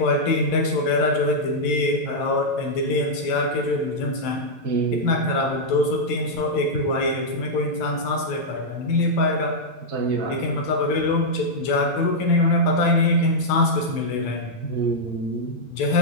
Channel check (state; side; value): late; right; 9.0 ms